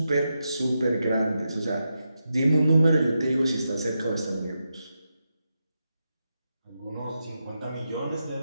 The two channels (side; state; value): both; inverted; correlation -0.87